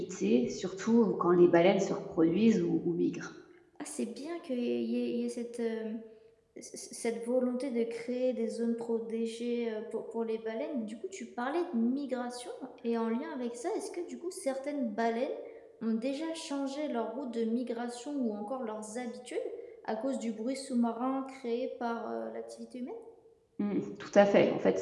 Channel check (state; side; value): identical; both; correlation 1.00